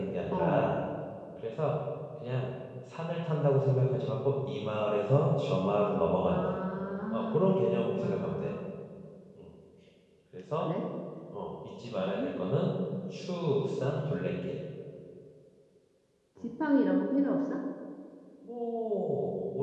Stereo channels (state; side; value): identical; both; correlation 1.00